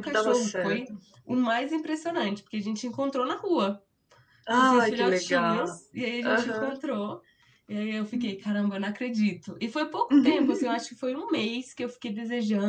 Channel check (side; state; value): both; identical; correlation 1.00